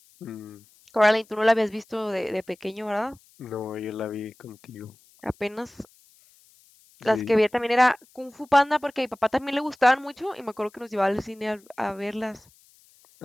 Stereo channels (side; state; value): left; noise; hiss, 29 dB below the sound